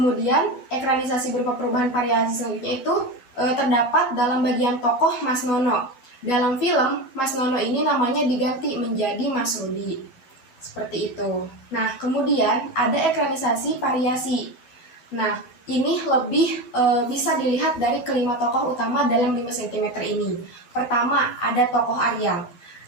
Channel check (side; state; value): right; late; 11 ms